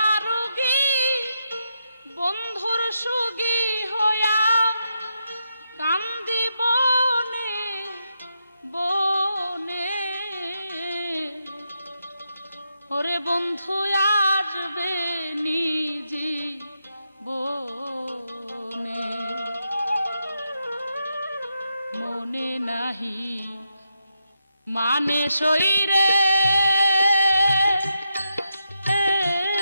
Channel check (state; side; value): inverted; both; correlation -0.84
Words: বন্ধুর সুগী হইয়া কান্দি বনে বনে ওরে বন্ধু আসবে নিজি বনে মনে নাহি মানে শরীরে